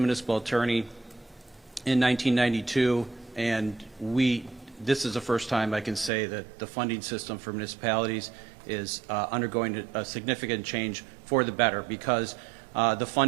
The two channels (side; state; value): left; drops out; at 6.1 s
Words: attorney in 1992, and this is the first time I can say that the funding system for municipalities is undergoing a significant change for the better, because the